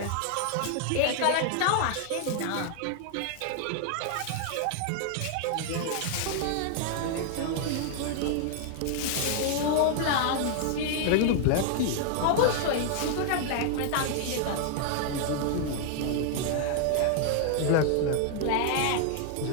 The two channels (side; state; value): both; different; correlation 0.00